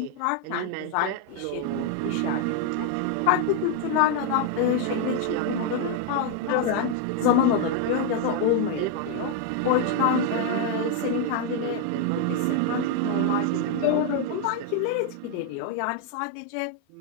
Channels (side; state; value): both; different; correlation 0.01